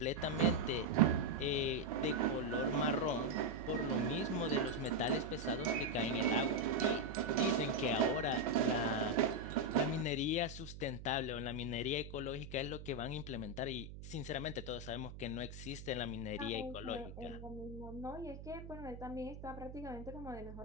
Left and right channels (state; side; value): noise; right; hum, 12 dB below the sound